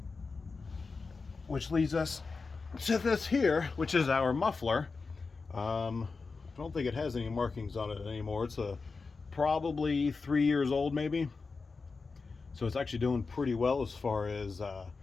which leads us to this here, which is our muffler. I don't think it has any markings on it anymore. It's probably 3 years old, maybe. So it's actually doing pretty well as far as the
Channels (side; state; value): right; quieter; 4.4 dB